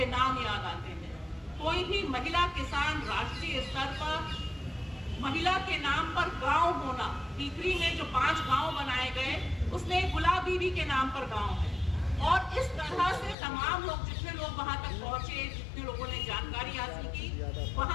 नाम याद आते हैं। कोई भी महिला किसान राष्ट्रीय स्तर पर महिला के नाम पर गांव होना, टीकरी में जो 5 गांव बनाए गए, उसमें गुलाब बीबी के नाम पर गांव है। और इस तरह से तमाम लोग, जितने लोग वहां तक पहुंचे, जितने लोगों ने जानकारी हासिल की,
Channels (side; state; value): right; drops out; at 13.4 s